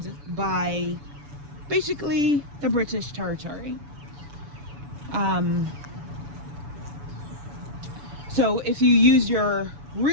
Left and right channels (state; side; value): late; left; 6.9 ms